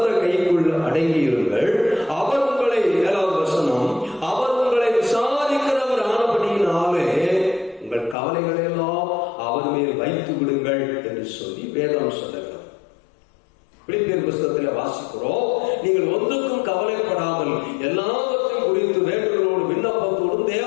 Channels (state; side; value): drops out; right; at 8.2 s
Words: கைக்குள் அடங்கியிருங்கள். அவர் உங்களை, 7வது வசனம், அவர் உங்களை விசாரிக்கிறவர் ஆனபடியினாலே உங்கள் கவலைகளை எல்லாம் அவர் மேல் வைத்து விடுங்கள் என்று சொல்லி வேதம் சொல்லுகிறது. பிலிப்பியர் புத்தகத்தில் வாசிக்கிறோம், நீங்கள் ஒன்றுக்கும் கவலைப்படாமல் எல்லாவற்றையும் குறித்து வேண்டுதலோடு விண்ணப்பத்தோடும்